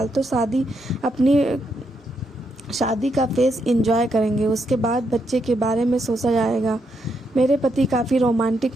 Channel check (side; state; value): both; normal; correlation 0.79